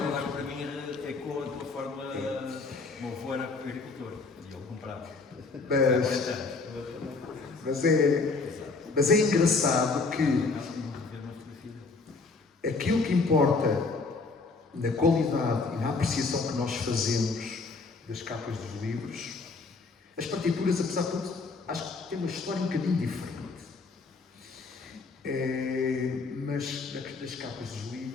d'água para mim ecoa de uma forma. O meu avô era agricultor e ele comprava. Mas é engraçado que aquilo que importa na qualidade e na apreciação que nós fazemos das capas dos livros, as partituras, apesar de tudo, acho que têm uma história um bocadinho diferente. Mas das capas dos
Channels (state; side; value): quieter; right; 4.1 dB